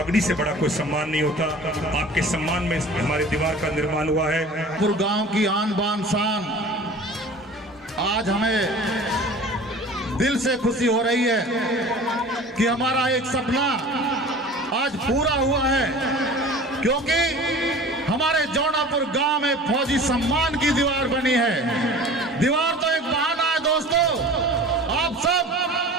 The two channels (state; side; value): normal; both; correlation 0.41